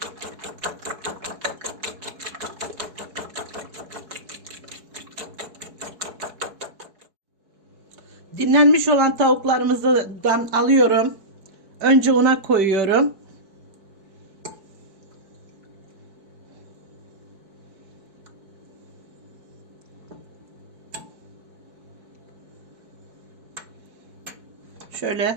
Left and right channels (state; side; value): late; left; 4.7 ms